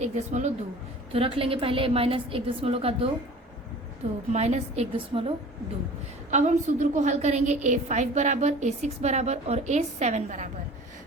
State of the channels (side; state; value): both; normal; correlation 0.43